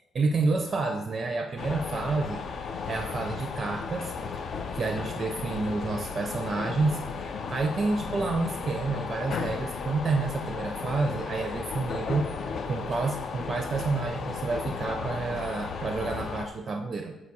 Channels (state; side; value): normal; both; correlation 0.80